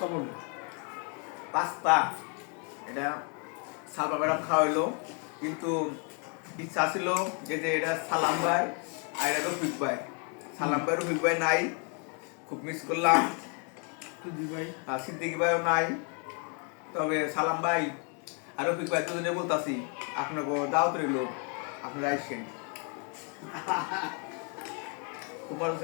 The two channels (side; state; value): right; quieter; 38.0 dB